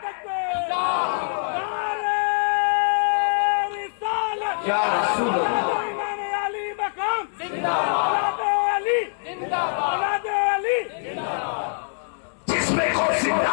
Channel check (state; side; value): silent; right; digital silence